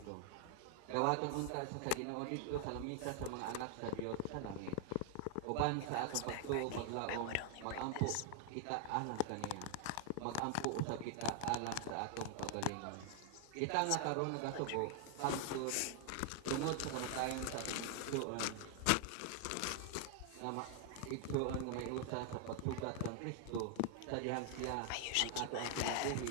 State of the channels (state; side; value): different; both; correlation 0.00